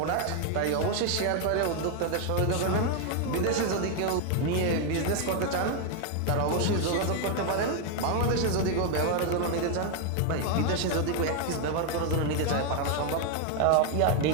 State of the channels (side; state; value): both; different; correlation 0.01